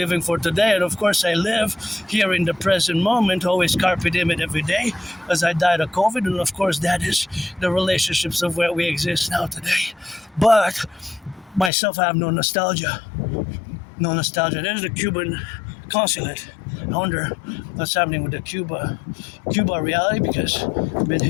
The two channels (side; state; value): right; drops out; at 11.7 s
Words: for today, and of course I live here in the present moment, always carpe diem every day, as I died of COVID, and of course that is the relationships of where we exist now today. But myself, I have no nostalgia. No nostalgia. There's the Cuban consulate. I wonder what's happening with the Cuba reality, because I've been